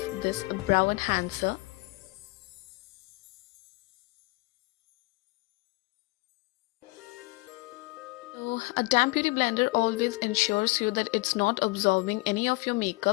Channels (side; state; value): right; quieter; 24.9 dB